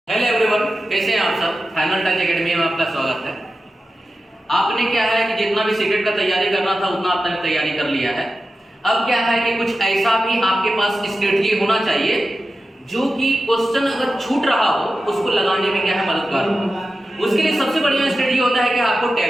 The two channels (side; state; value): both; normal; correlation 0.93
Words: हेलो एवरीवन, कैसे हैं आप सब। फाइनल टच एकेडमी में आपका स्वागत है। आपने क्या है कि जितना भी सीटेट का तैयारी करना था उतना आपने तैयारी कर लिया है। अब क्या है कि कुछ ऐसा भी आपके पास स्ट्रेटजी होना चाहिए जो कि क्वेश्चन अगर छूट रहा हो उसको लगाने में क्या है मददगार हो। उसके लिए सबसे बढ़िया स्ट्रेटजी होता है कि आपको